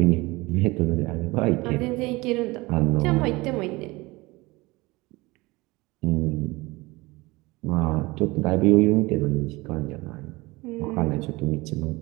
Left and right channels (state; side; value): quieter; left; 22.3 dB